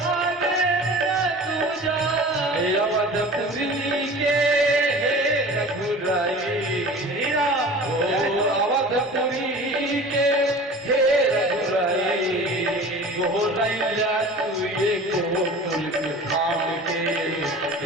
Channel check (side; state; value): both; normal; correlation 0.40